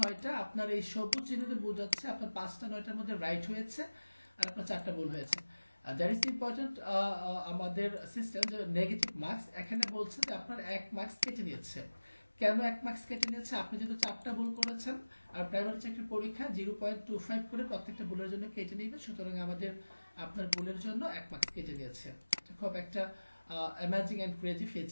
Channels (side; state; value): both; inverted; correlation -1.00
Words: 9টা। আপনার এই সবুজ চিহ্নতে বোঝাচ্ছে আপনার 5টা 9টার মধ্যে রাইট হয়েছে, আর আপনার 4টা ভুল হয়েছে। That is important. আমাদের সিস্টেম যে নেগেটিভ মার্কস এখানে বলছে যে আপনার 1 মার্কস কেটে নিয়েছে। কেন 1 মার্কস কেটে নিয়েছে? আপনি যেহেতু 4টা ভুল করেছেন, আর প্রাইমারি চাকরির পরীক্ষা 0.25 করে প্রত্যেকটা ভুলের জন্য কেটে নিবে, সুতরাং আমাদের আপনার ভুলের জন্য 1 মার্কস কেটে নিয়েছে। খুব একটা amazing and crazy